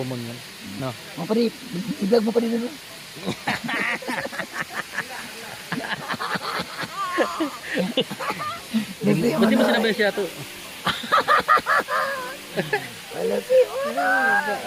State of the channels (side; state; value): both; identical; correlation 1.00